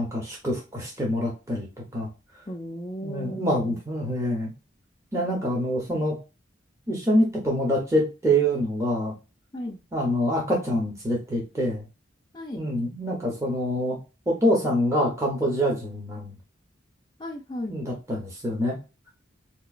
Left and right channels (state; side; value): normal; both; correlation 0.60